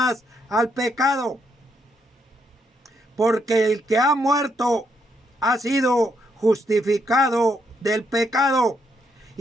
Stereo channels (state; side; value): normal; both; correlation 0.76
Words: al pecado, porque el que ha muerto ha sido justificado del pecado.